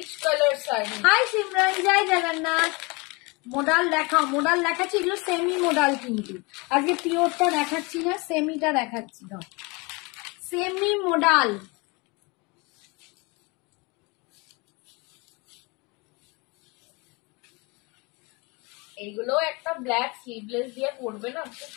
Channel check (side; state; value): right; quieter; 27.6 dB